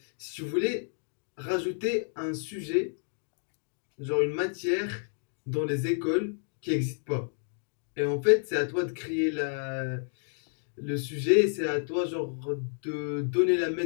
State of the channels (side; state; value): right; silent; 58 dB below the other